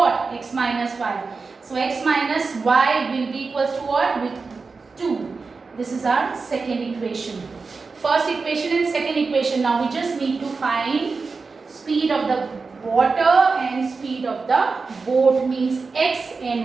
X minus y. So x minus y will be equals to what? With 2. This is our second equation. First equation and second equation. Now we just need to find speed of the water and speed of the boat, means x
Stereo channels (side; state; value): left; quieter; 4.4 dB